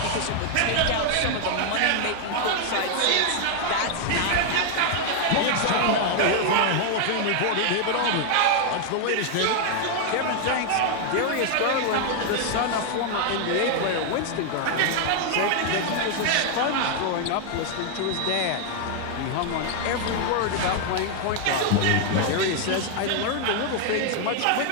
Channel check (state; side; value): different; both; correlation 0.00